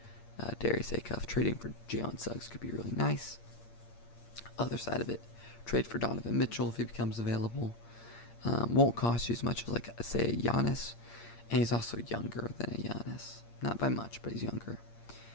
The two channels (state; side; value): late; right; 8.6 ms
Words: Darius Acuff, trading for Jalen Suggs could be really nice. Other side of it, trade for Donovan Mitchell if he becomes available. Won't cost you as much as, like, say, a Giannis. And he's also younger than a Giannis. Not by much, but he's younger.